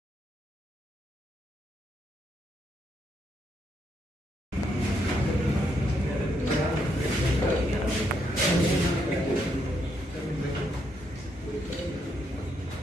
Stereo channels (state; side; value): normal; both; correlation 0.76